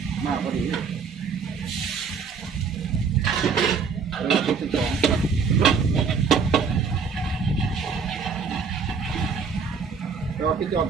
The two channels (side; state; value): left; quieter; 5.7 dB